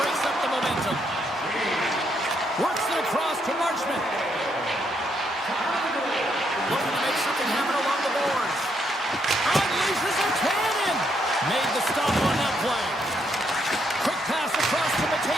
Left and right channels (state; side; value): normal; both; correlation 0.75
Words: up the momentum. Works it across to Marchment. Looking to make something happen along the boards. Unleashes a cannon. Made the stop on that play. Quick pass across to